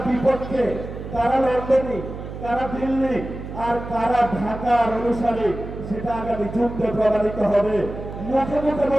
বিপক্ষে, কারা লন্ডনী, কারা দিল্লি আর কারা ঢাকার অনুসারী। সেটা আগামী যুদ্ধে প্রমাণিত হবে। মুখে মুখে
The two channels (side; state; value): right; noise; hum, 9 dB below the sound